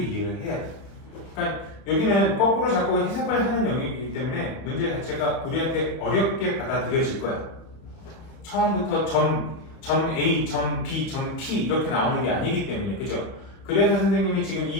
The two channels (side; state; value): right; late; 31 ms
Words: 해야 돼. 그러니까 여기는 거꾸로 자꾸 해석을 하는 영역이기 때문에 문제 자체가 우리한테 어렵게 받아들여질 거야. 처음부터 점 A, 점 B, 점 P 이렇게 나오는 게 아니기 때문에, 그죠? 그래서 선생님이 지금